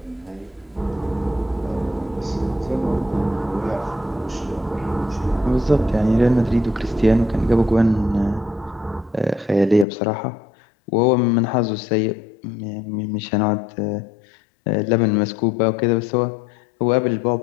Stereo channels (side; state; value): right; drops out; at 9.9 s